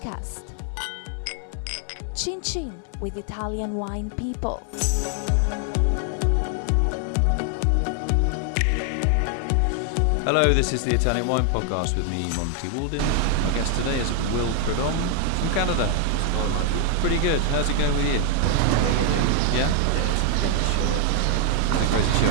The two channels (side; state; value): both; different; correlation 0.00